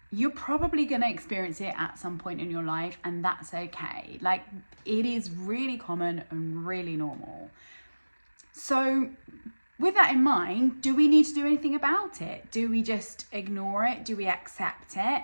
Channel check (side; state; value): both; inverted; correlation -1.00